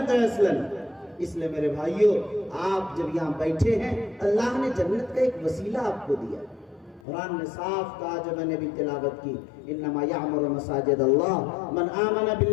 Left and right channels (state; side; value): drops out; right; at 7.0 s